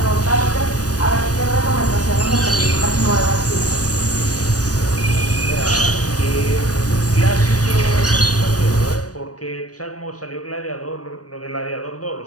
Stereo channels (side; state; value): right; late; 0.68 ms